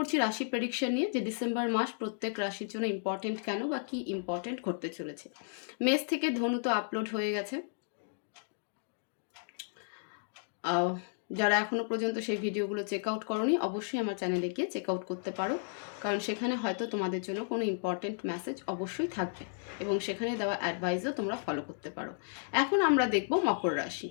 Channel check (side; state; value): right; silent; digital silence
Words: রাশি প্রেডিকশন নিয়ে, যে ডিসেম্বর মাস প্রত্যেক রাশির জন্য ইম্পর্টেন্ট কেন বা কি ইম্পর্টেন্ট ঘটতে চলেছে। মেষ থেকে ধনু তো আপলোড হয়ে গেছে। যারা এখনও পর্যন্ত সেই ভিডিওগুলো চেক আউট করোনি, অবশ্যই আমার চ্যানেলে গিয়ে চেক আউট করতে পারো, কারণ সেখানে হয়তো তোমাদের জন্য কোনো ইম্পর্টেন্ট মেসেজ অবশ্যই থাকবে এবং সেখানে দেওয়া অ্যাডভাইসও তোমরা ফলো করতে পারো। এখন আমরা দেখব মকর রাশি।